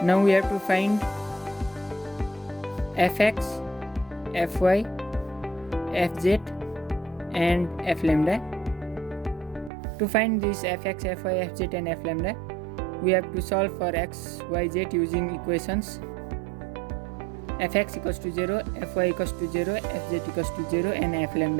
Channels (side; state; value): left; drops out; at 9.7 s